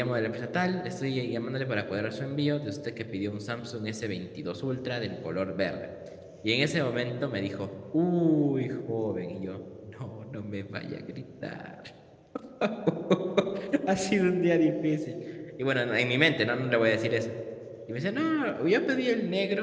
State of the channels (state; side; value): identical; both; correlation 1.00